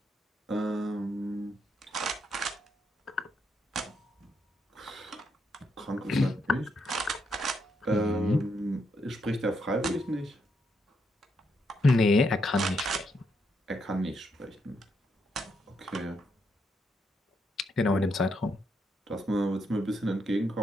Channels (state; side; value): normal; both; correlation 0.78